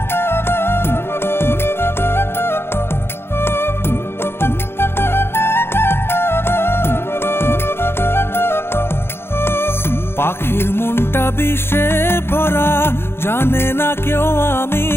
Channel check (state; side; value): late; right; 0.11 ms